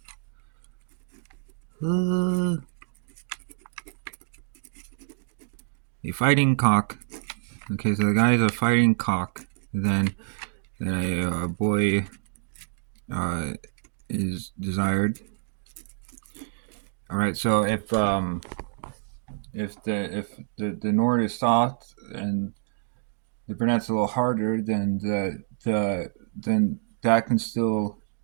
fighting cock. Okay, so the guy is a fighting cock. Then a boy is desired. All right, so if the Nord is soft and the brunette's a little harder, then then that can still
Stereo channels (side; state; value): left; silent; digital silence